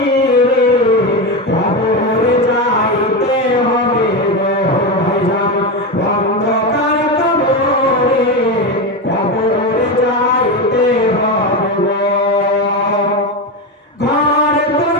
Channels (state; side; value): normal; both; correlation 0.15